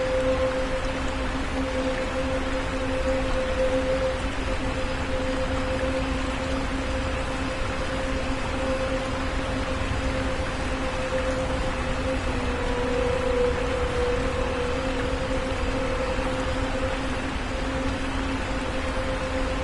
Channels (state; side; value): identical; both; correlation 1.00